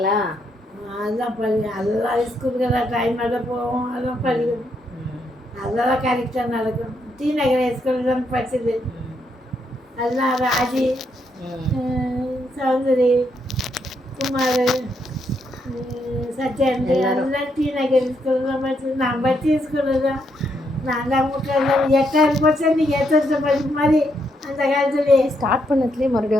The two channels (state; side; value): normal; both; correlation 0.77